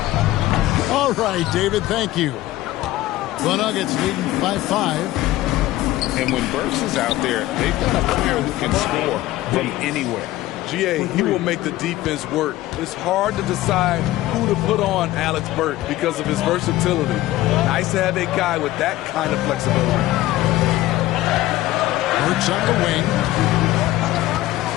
All right, David, thank you. The Nuggets leading by 5. And when Burks is out there, they've got a player who can score from anywhere. GA, he will make the defense work. It's hard to decide who to put on Alex Burke because of his versatility. Nice to have a guy with that kind of flexibility. Burks on the wing.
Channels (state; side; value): quieter; right; 16.1 dB